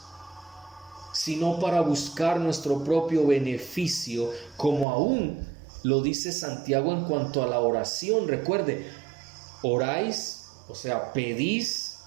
sino para buscar nuestro propio beneficio, como aún lo dice Santiago en cuanto a la oración. Recuerde, oráis, o sea, pedís,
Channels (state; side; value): drops out; left; at 4.9 s